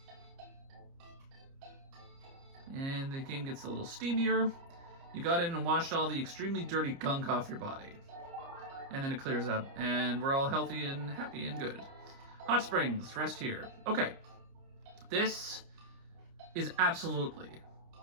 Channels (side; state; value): left; late; 30 ms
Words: And the game gets a little steamier. You got in and washed all the extremely dirty gunk off your body. And then it clears up. And we're all healthy and happy and good. Hot springs. Rest here. Okay. This is absolutely,